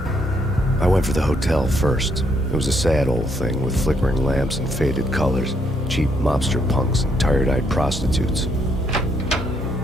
I went for the hotel first. It was a sad old thing with flickering lamps and faded colors, cheap mobster punks and tired-eyed prostitutes.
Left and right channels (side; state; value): both; normal; correlation 0.73